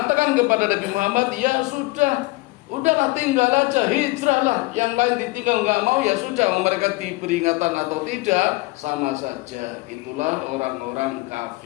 kepada Nabi Muhammad, ya sudah, udahlah tinggal aja, hijrahlah. Yang lain ditinggal nggak mau ya sudah, mereka diberi peringatan atau tidak sama saja. Itulah orang-orang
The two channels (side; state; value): right; quieter; 22.4 dB